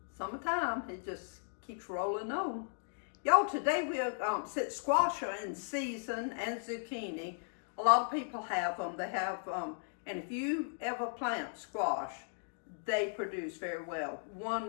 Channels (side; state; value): right; silent; digital silence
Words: summertime, it just keeps rolling on. Y'all, today we'll squash are in season and zucchini. A lot of people have them. They have, and if you ever plant squash, they produce very well.